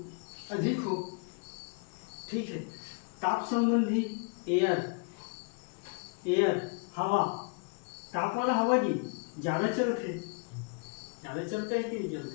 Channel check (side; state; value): right; quieter; 36.6 dB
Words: हो। ठीक है, ताप संबंधी एयर हवा, ताप वाला हवा की ज़्यादा चलता है कि नहीं चलता